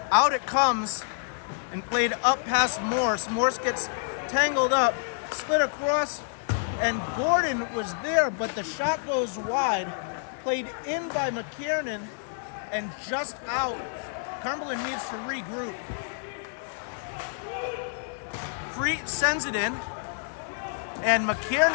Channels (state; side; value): silent; right; digital silence